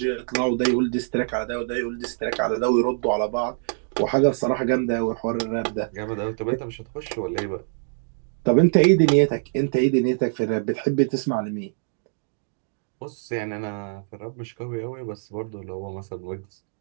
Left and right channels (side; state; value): left; silent; digital silence